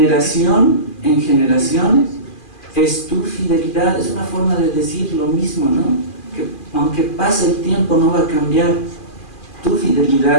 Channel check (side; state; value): right; late; 2.4 ms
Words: en generación es tu fidelidad. Es una forma de decir lo mismo, ¿no? Que aunque pase el tiempo no va a cambiar. Tu